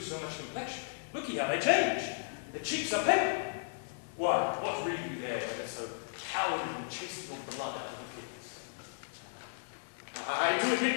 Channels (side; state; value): right; silent; digital silence